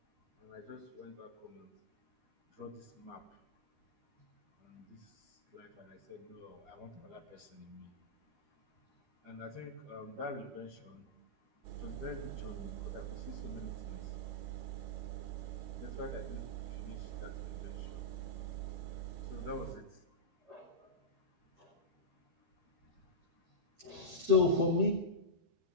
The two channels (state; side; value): late; left; 13 ms